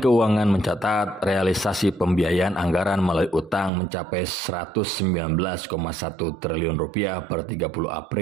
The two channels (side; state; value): left; drops out; at 3.7 s